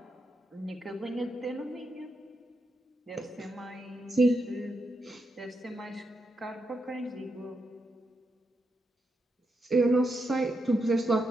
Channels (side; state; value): both; normal; correlation 0.83